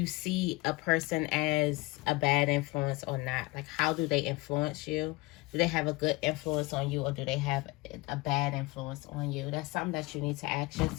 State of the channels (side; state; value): right; quieter; 22.3 dB